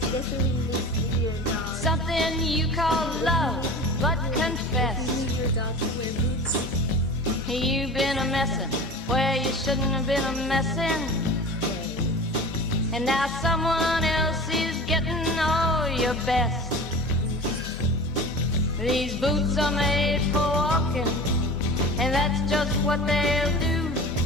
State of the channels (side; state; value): both; normal; correlation 0.35